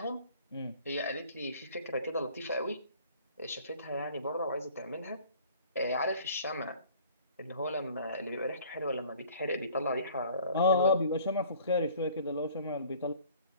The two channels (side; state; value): both; inverted; correlation -0.51